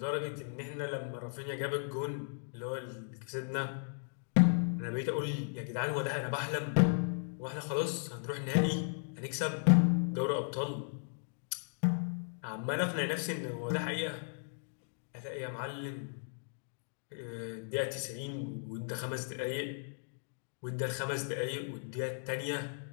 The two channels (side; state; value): right; silent; digital silence